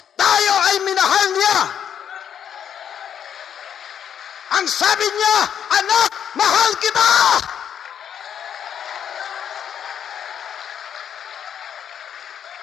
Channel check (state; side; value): quieter; right; 8.7 dB